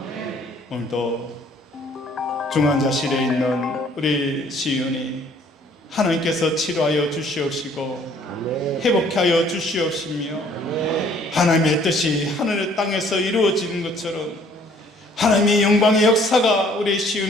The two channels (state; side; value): normal; both; correlation 0.59